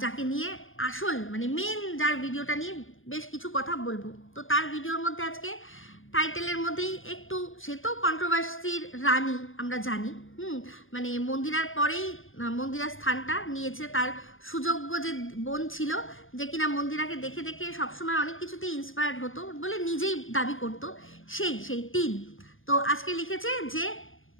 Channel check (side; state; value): right; late; 0.59 ms